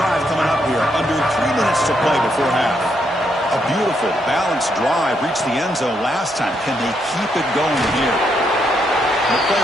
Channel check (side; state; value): both; normal; correlation 0.77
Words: coming up here, under 3 minutes to play before half. A beautiful, balanced drive reached the end zone last time. Can they keep it going here? The player